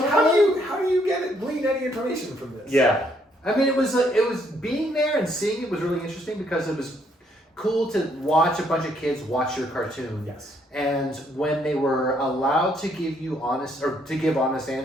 how do you glean any information from this? Yeah. I mean, it was being there and seeing it was really interesting because it was cool to watch a bunch of kids watch your cartoon. Yes. And when they were allowed to give you honest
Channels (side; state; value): both; normal; correlation 0.70